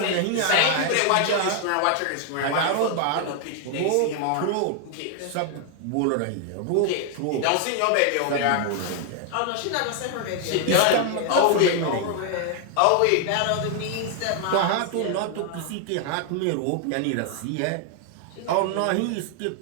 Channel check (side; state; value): both; different; correlation 0.00